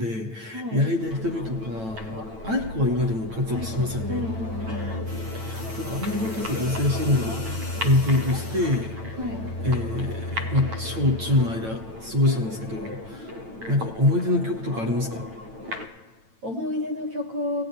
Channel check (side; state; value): left; late; 9.0 ms